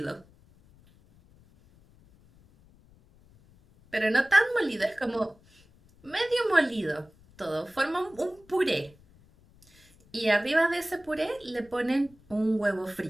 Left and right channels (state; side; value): noise; left; rumble, 28 dB below the sound